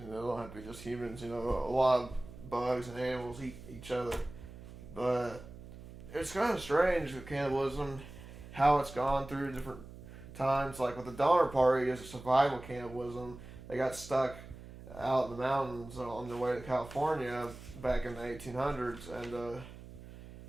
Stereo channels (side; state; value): right; noise; hum, 15 dB below the sound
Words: it don't have to be just humans. You know, a lot of bugs and animals eat each other, but it's kind of strange with cannibalism, how it's gone through different times. Like with the Donner Party, it's a survival cannibalism. They got stuck out in the mountains on their way to California back in the 1800s, and